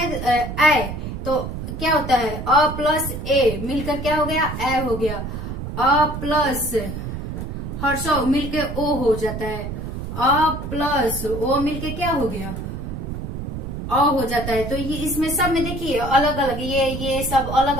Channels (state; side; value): noise; right; rumble, 6 dB below the sound